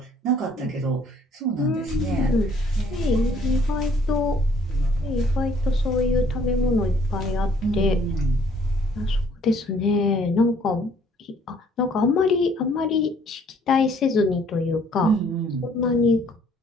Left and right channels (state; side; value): normal; both; correlation 0.61